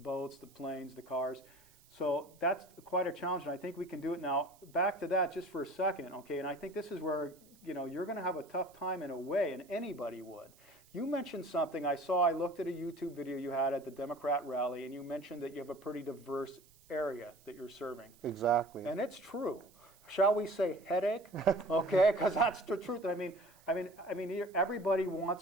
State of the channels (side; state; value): right; noise; hiss, 28 dB below the sound